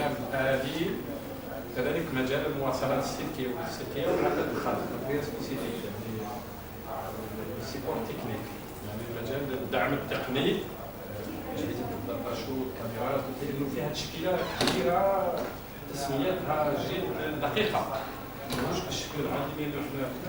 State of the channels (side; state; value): both; identical; correlation 1.00